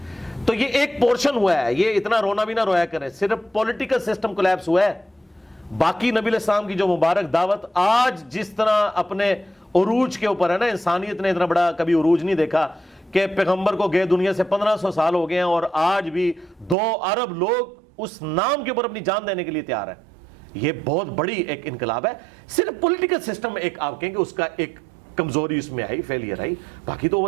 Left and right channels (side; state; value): left; drops out; at 16.8 s